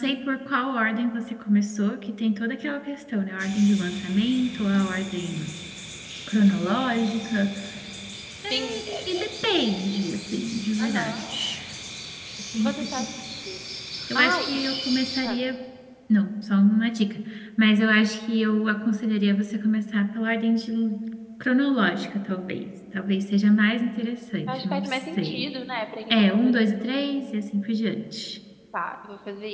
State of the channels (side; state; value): both; identical; correlation 1.00